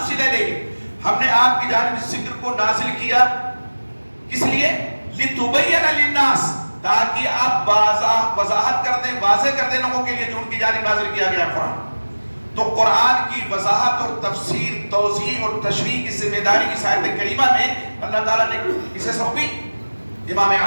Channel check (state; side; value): inverted; both; correlation -1.00